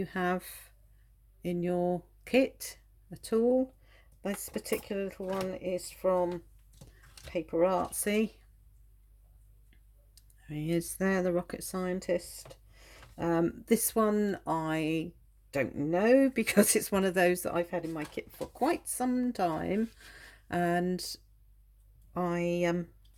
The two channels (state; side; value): identical; both; correlation 1.00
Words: have in your kit at all. This particular little one is from Paper Artsy. There he is there, the rocket scientist. This one I don't know because it's one of those that I've had in my kit for quite some time, and I